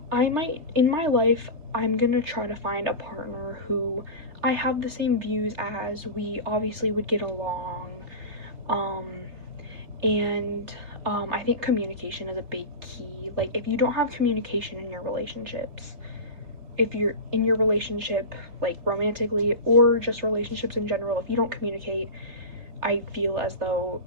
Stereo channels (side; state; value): left; late; 3.3 ms